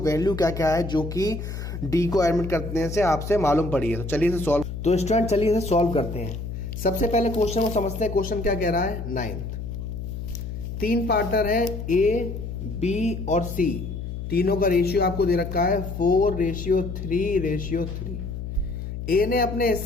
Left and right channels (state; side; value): noise; left; hum, 6 dB below the sound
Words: क्या क्या है जो कि डी को एडमिट करने से आपसे मालूम पड़ी है। तो चलिए इसे सॉल्व, तो स्टूडेंट चलिए इसे सॉल्व करते हैं। सबसे पहले क्वेश्चन को समझते हैं। क्वेश्चन क्या कह रहा है, 9th तीन पार्टनर है ए बी और सी, तीनों का रेशियो आपको दे रखा है 4:3:3। ए ने अपने